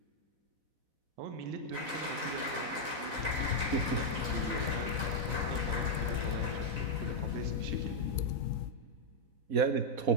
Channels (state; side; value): late; left; 4.0 ms